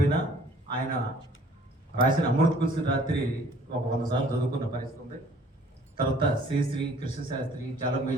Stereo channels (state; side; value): normal; both; correlation 0.55